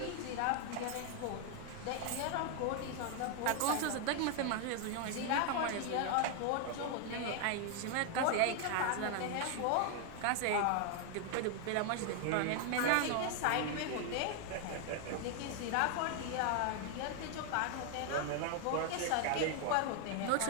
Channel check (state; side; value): different; both; correlation 0.00